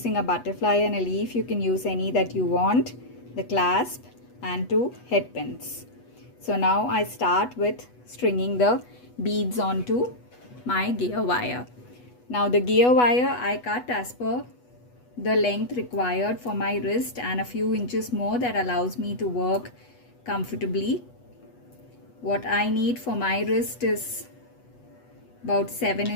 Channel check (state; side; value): late; right; 8.2 ms